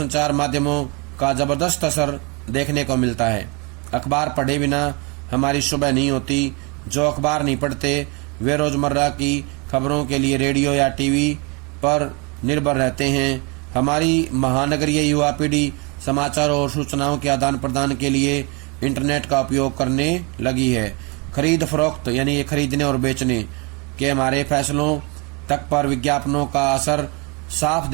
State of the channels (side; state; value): left; quieter; 30.9 dB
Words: माध्यमों का जबरदस्त असर देखने को मिलता है। अखबार पढ़े बिना हमारी सुबह नहीं होती। जो अखबार नहीं पढ़ते वे रोजमर्रा की खबरों के लिए रेडियो या टीवी पर निर्भर रहते हैं। हमारी महानगरीय युवा पीढ़ी समाचार और सूचनाओं के आदान प्रदान के लिए इंटरनेट का उपयोग करने लगी है। खरीद फरोख्त यानी खरीदने और बेचने के हमारे फैसलों तक पर विज्ञापनों का असर साफ